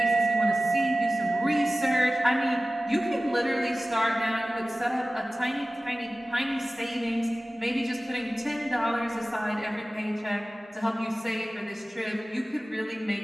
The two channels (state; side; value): normal; both; correlation 0.96